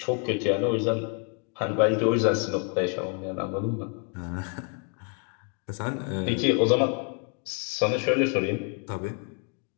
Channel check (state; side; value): quieter; right; 38.8 dB